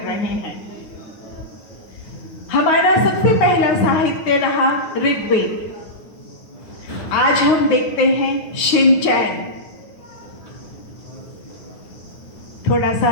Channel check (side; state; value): right; late; 9.4 ms